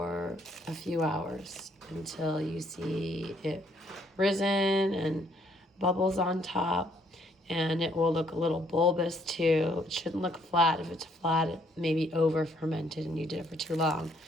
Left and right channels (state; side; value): normal; both; correlation 0.67